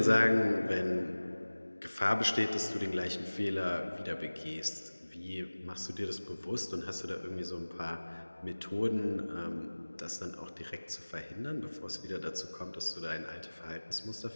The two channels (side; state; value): both; inverted; correlation -1.00